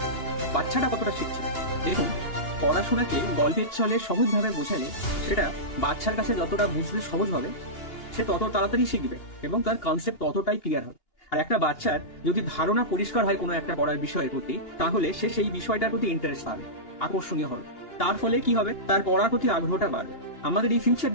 বাচ্চাটা কতটা শিখছে? দেখুন, পড়াশোনাকে গল্পের ছলে সহজভাবে বোঝালে সেটা বাচ্চার কাছে যতটা বুঝতে সহজ হবে, সে তত তাড়াতাড়ি শিখবে এবং তার কনসেপ্ট ততটাই ক্লিয়ার হবে। আর একটা বাচ্চার যদি ধারণা পরিষ্কার হয় কোনো একটা পড়ার বিষয়ের প্রতি, তাহলে সে সেই বিষয়টার প্রতি ইন্টারেস্ট পাবে, আকর্ষণীয় হবে। তার ফলে কি হবে? তার পড়ার প্রতি আগ্রহটা বাড়বে। আমাদের এই ফিউচার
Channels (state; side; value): late; right; 2.8 ms